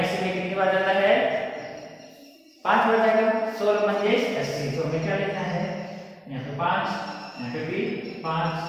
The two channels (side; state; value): both; identical; correlation 1.00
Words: में कितनी बार जाता है 5 बार जाएगा। 16 पंजे 80, तो हमें क्या लिखना है यहाँ पे 5, यहाँ पे भी 5